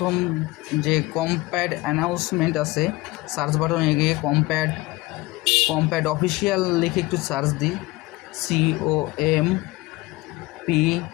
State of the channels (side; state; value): right; quieter; 20.7 dB